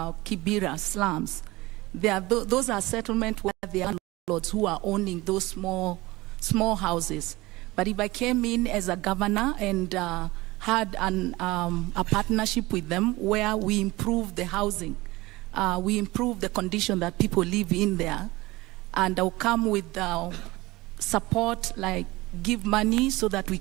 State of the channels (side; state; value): left; quieter; 20.5 dB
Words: slums, those are settlements where the landlords who are owning those small houses. But if I came in as a governor and had a partnership with them where we improve the housing, we improve the condition that people live in there, and I'll come with support, like give money so that we